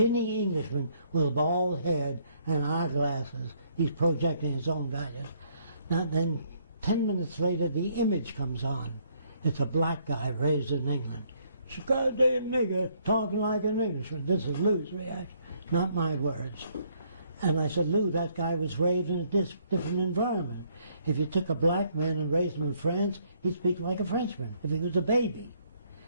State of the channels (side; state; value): both; inverted; correlation -0.68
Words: Englishman with a bald head and eyeglasses. He's projecting his own values. Now then, 10 minutes later, the image comes on. It's a black guy raised in England. She's a goddamn nigger talking like an Englishman. This is Lou's reaction, not my words. And I said, Lou, that guy was raised in a different environment. If you took a black man and raised him in France, he'd speak like a Frenchman, if he was a baby.